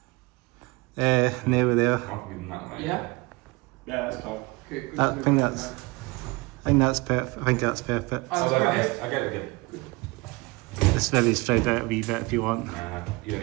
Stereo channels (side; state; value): left; quieter; 24.5 dB